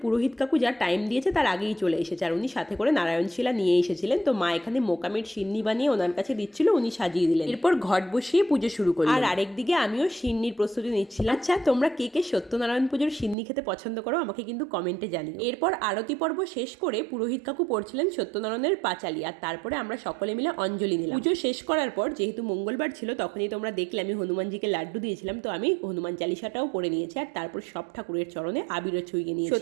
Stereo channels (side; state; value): left; drops out; at 13.4 s